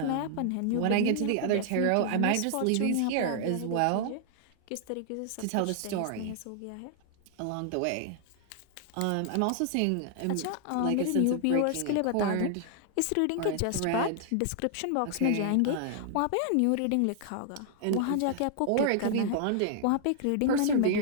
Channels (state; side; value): different; both; correlation 0.00